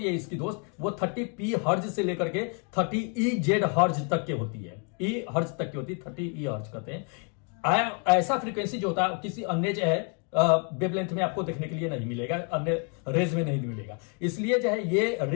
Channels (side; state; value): right; quieter; 38.0 dB